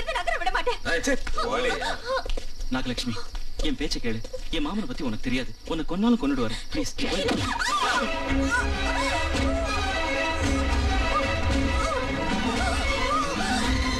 இருந்து நகர விட மாட்டேன். நாகலட்சுமி, என் பேச்ச கேளு. என் மாமனை பத்தி உனக்கு தெரியாது. உன்னை கொன்னாலும் கொண்டுட்டு வரேன். ப்ளீஸ்.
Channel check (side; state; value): both; identical; correlation 1.00